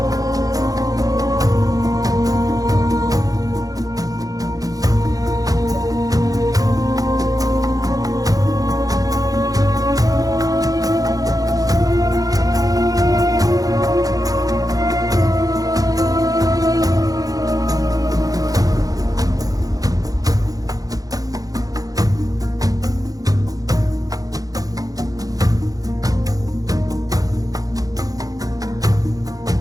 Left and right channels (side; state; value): left; late; 0.17 ms